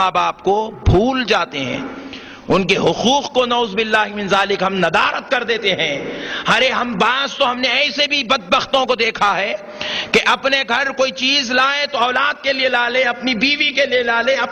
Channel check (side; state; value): both; identical; correlation 1.00